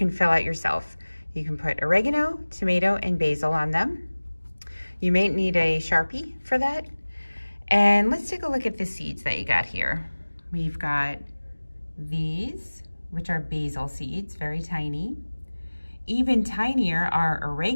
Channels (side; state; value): both; inverted; correlation -1.00